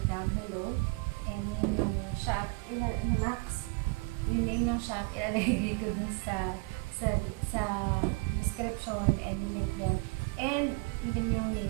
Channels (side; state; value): left; quieter; 28.0 dB